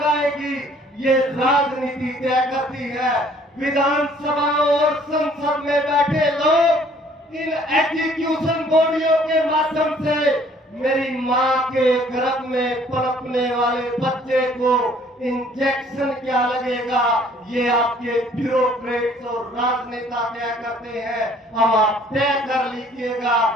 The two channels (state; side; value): normal; both; correlation 0.58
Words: ये राजनीति तय करती है। विधानसभा और संसद में बैठे लोग इन एग्जीक्यूशन बॉडियों के माध्यम से मेरी मां के गर्भ में पनपने वाले बच्चे को इंजेक्शन क्या लगेगा, ये आपके ब्यूरोक्रेट्स और राजनेता तय करते हैं। अब आप तय कर लीजिएगा,